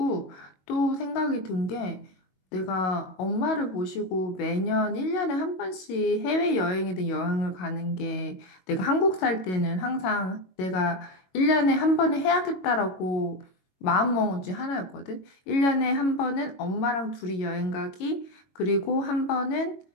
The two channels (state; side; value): late; right; 22 ms